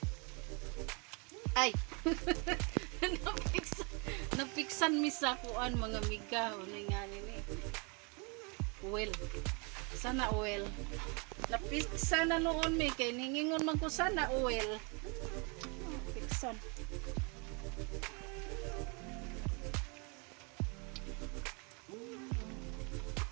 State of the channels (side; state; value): left; quieter; 32.6 dB